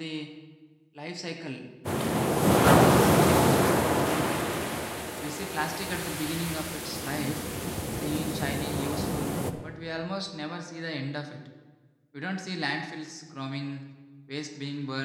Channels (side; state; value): both; identical; correlation 1.00